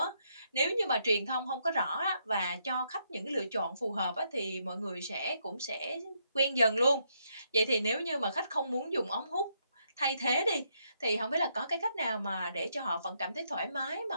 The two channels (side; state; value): both; inverted; correlation -0.76